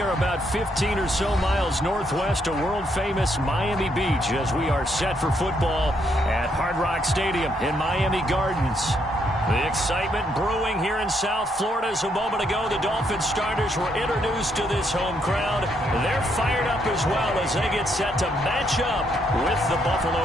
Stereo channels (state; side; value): normal; both; correlation 0.74